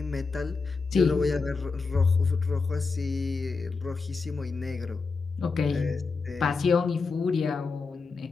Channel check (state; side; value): quieter; right; 4.4 dB